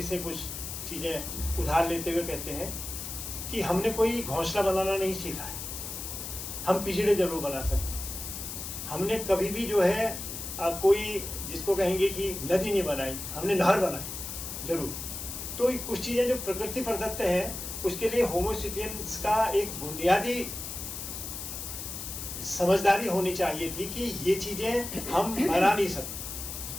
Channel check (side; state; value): left; noise; hiss, 7 dB below the sound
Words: से कुछ चीज़ें उधार लेते हुए कहते हैं कि हमने कोई घोंसला बनाना नहीं सीखा है, हम पिंजड़े जरूर बना सकते हैं। हमने कभी भी जो है कोई जिसको कहेंगे कि नदी नहीं बनाई, हमने नहर बनाई जरूर। तो कुछ चीज़ें जो प्रकृति प्रदत्त हैं उसके लिए होमो सेपियंस का एक बुनियादी समझदारी होनी चाहिए थी कि ये चीज़ें हम बना नहीं सकते,